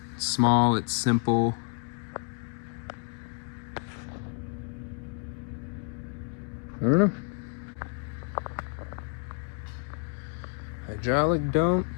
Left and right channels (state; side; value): quieter; right; 37.3 dB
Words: It's small, it's simple. I don't know. Hydraulic dump.